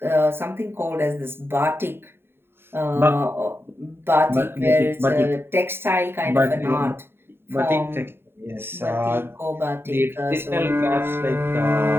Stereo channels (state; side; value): late; left; 0.11 ms